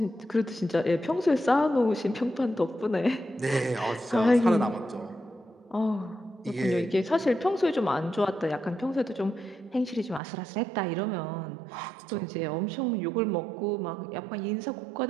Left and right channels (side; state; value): left; drops out; at 10.2 s